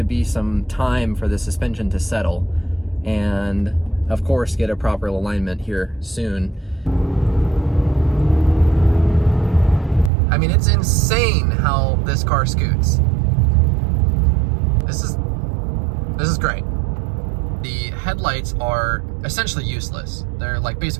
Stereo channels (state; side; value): drops out; left; at 10.1 s